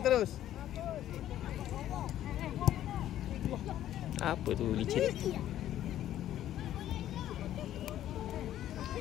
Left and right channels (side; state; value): right; quieter; 12.2 dB